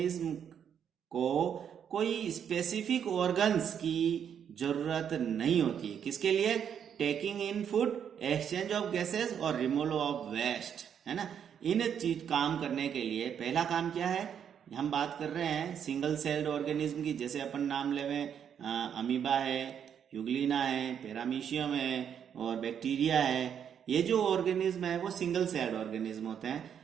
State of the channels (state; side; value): quieter; left; 8.3 dB